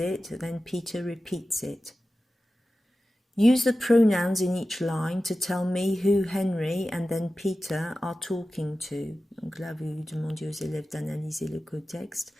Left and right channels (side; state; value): both; normal; correlation 0.94